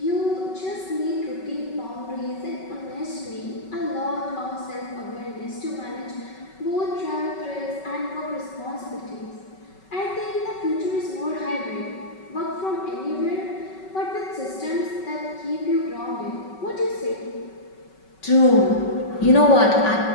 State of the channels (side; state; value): right; late; 5.3 ms